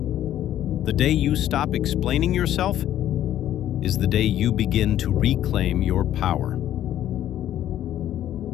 The day you stop explaining yourself is the day you begin to reclaim your power.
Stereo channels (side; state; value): right; quieter; 12.0 dB